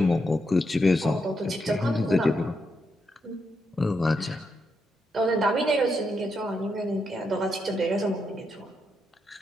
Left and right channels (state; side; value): normal; both; correlation 0.82